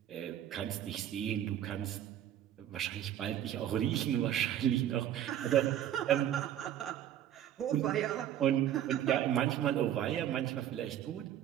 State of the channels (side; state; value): left; quieter; 11.1 dB